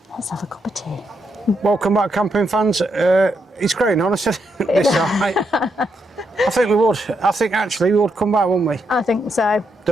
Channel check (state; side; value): normal; both; correlation 0.80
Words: Let's have a cup of tea. Welcome back, camping fans. It's growing on us this side. I think we would. I think actually we would come back, wouldn't we? I think so.